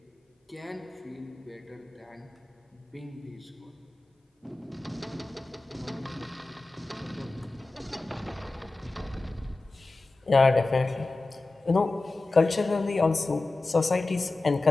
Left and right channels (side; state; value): right; quieter; 3.2 dB